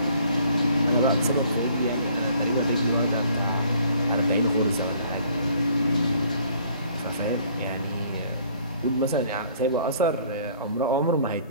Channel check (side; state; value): both; inverted; correlation -0.58